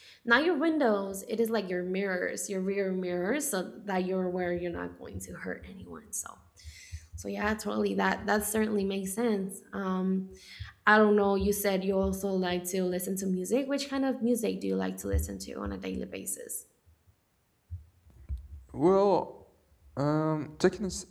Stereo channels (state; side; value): identical; both; correlation 1.00